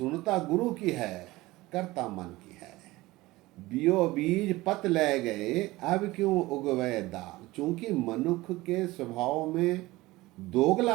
गुरु की है, करता मन की है। बियो बीज पत ले गए, अब क्यों उगवे दाल। चूंकि मनुष्य के स्वभाव में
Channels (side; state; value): left; quieter; 19.4 dB